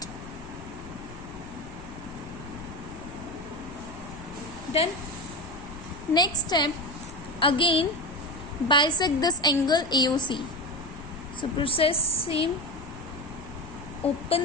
Then next step, again bisect this angle AOC. So process same.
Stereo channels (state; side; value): noise; left; rumble, 15 dB below the sound